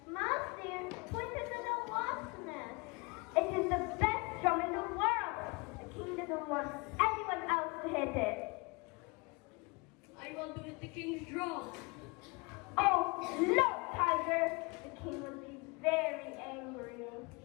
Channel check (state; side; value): quieter; right; 28.4 dB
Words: Mouse dear, point it to the wasp nest. It is the best drum in the world. The king doesn't want anyone else to hit it. I want to hit the king's drum. Oh, no, Tiger. The king will be very angry.